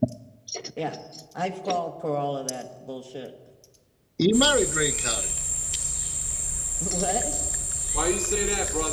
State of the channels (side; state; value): both; identical; correlation 1.00